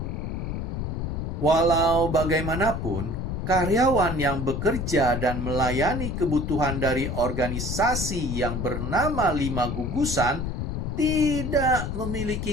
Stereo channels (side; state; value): left; noise; rumble, 3 dB below the sound